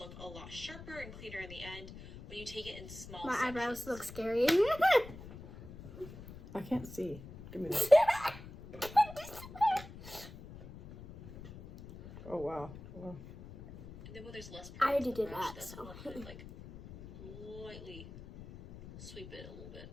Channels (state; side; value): noise; left; rumble, 14 dB below the sound